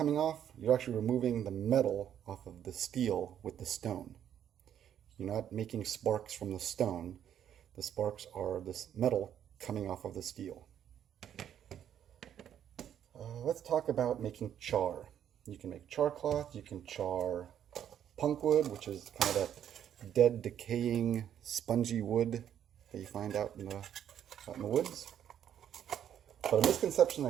off, you're actually removing the metal off of the steel with the stone. You're not making sparks from the stone. The sparks are this metal coming off of the steel. Let's talk about making char. You can make char cloth, you can char punk wood, which is kind of that dead, decaying, spongy wood that you find out in the woods. But a misconception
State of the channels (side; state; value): left; quieter; 9.8 dB